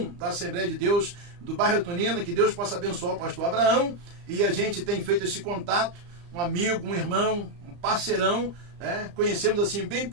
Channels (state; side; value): late; left; 35 ms